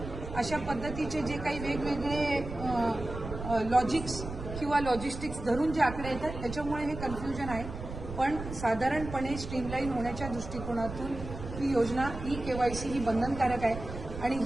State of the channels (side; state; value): right; noise; rumble, 9 dB below the sound